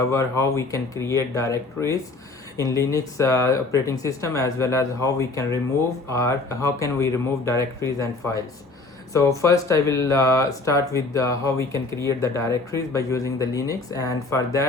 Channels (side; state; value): right; quieter; 3.5 dB